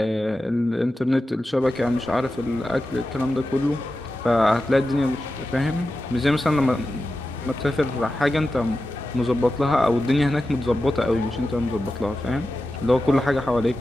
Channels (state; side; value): normal; both; correlation 0.92